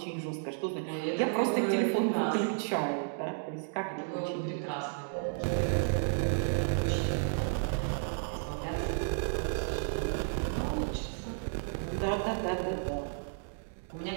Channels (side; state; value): left; silent; digital silence